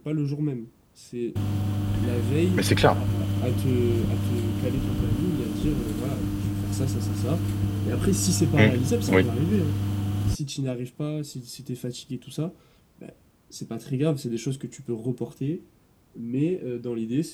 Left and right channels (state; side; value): identical; both; correlation 1.00